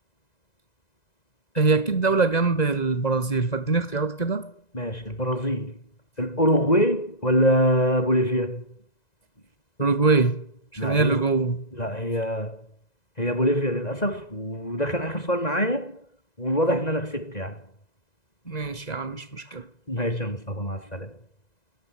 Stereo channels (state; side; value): late; right; 2.0 ms